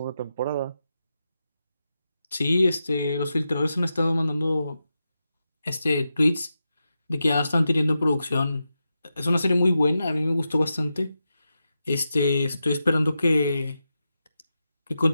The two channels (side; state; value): both; inverted; correlation -0.89